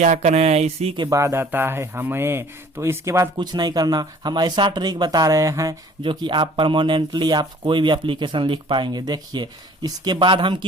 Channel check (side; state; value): both; normal; correlation 0.52